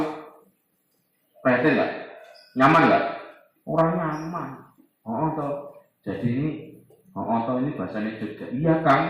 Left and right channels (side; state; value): both; identical; correlation 1.00